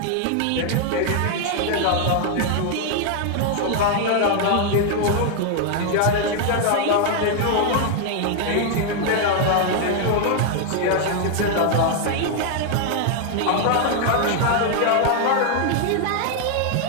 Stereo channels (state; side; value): different; both; correlation 0.00